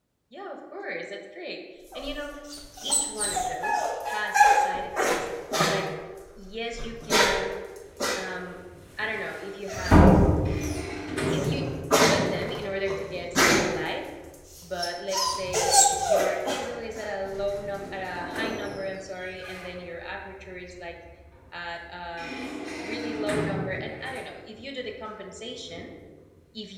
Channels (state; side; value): identical; both; correlation 1.00